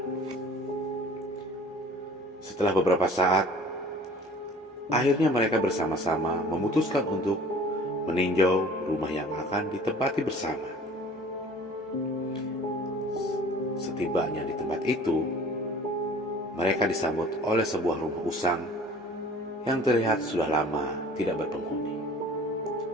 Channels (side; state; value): both; normal; correlation 0.47